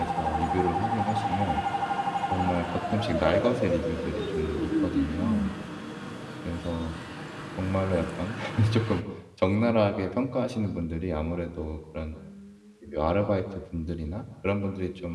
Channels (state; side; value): identical; both; correlation 1.00